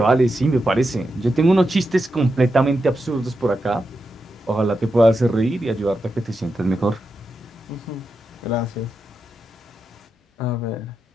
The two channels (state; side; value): normal; both; correlation 0.87